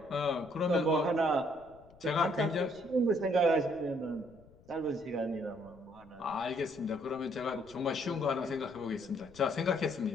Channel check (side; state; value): left; noise; rumble, 25 dB below the sound